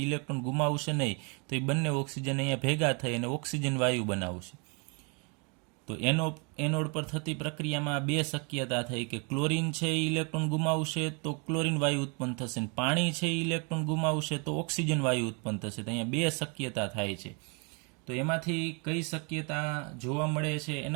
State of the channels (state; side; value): quieter; left; 34.1 dB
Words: ઇલેક્ટ્રોન ગુમાવશે નહીં, તો એ બંને ઓક્સિજન અહીંયા ભેગા થઈ અને ઓક્સિજન વાયુ બનાવશે. તો એનોડ પર થતી પ્રક્રિયામાં બે શક્યતા થઈ કે ક્લોરીન છે એ ઇલેક્ટ્રોન ગુમાવશે તો ક્લોરીન વાયુ ઉત્પન્ન થશે, અને પાણી છે એ ઇલેક્ટ્રોન ગુમાવશે તો ઓક્સિજન વાયુ ઉત્પન્ન થશે. તો અહીંયા બે શક્યતા થાય છે. તો એમાંથી કઈ શક્યતા જોવા મળે છે